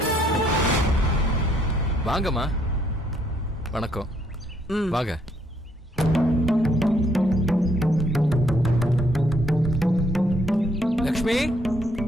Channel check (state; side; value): normal; both; correlation 0.69